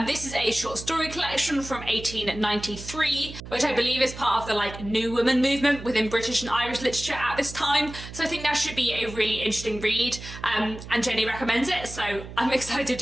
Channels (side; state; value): right; noise; hum, 12 dB below the sound